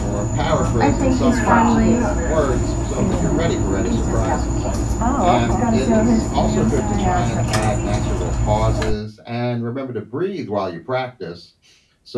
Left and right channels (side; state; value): both; identical; correlation 1.00